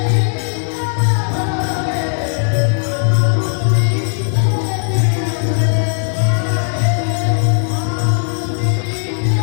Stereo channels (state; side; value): silent; right; digital silence